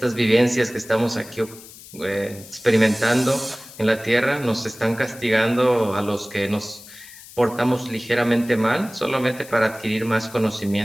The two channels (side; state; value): left; noise; hiss, 18 dB below the sound